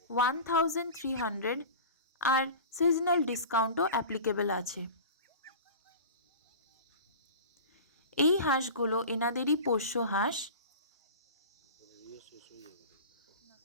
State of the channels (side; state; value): both; inverted; correlation -0.34